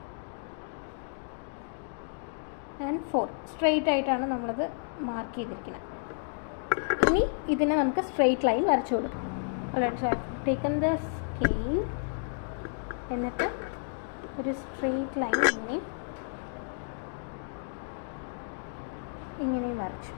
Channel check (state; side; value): silent; right; digital silence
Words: and 4 straight ആയിട്ടാണ് നമ്മളത് മാർക്ക് ചെയ്തിരിക്കുന്നത്. ഇനി ഇതിനെ നമുക്ക് സ്ട്രെയിറ്റ് ലൈൻ വരച്ചു കൊടുക്കും. So I taken the scale, എന്നിട്ട് ഒരു സ്ട്രെയിറ്റ് ലൈൻ ഇങ്ങനെയും വരച്ചു.